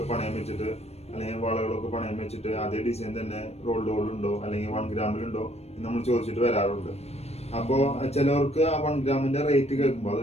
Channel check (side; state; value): right; late; 0.31 ms